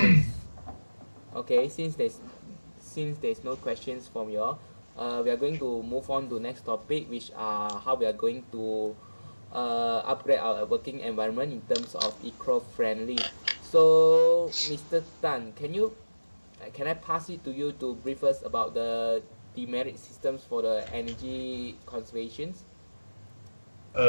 Okay, since there's no questions from you all, we are going to move on to next topic, which are how we are going to upgrade our working environment in terms of eco-friendly. So, Mr. Tan, can I pass it to you to brief us about the demerit systems for the energy conservations?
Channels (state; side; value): inverted; both; correlation -1.00